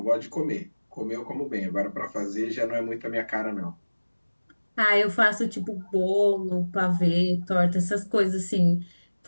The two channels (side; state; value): both; inverted; correlation -1.00